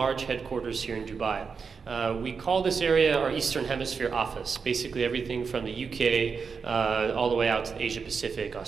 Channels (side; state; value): left; quieter; 5.5 dB